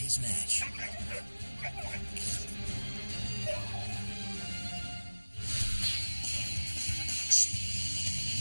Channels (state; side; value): inverted; both; correlation -1.00